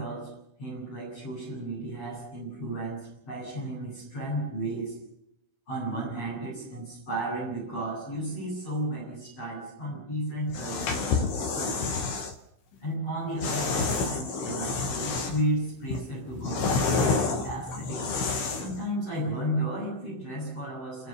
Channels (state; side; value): late; right; 16 ms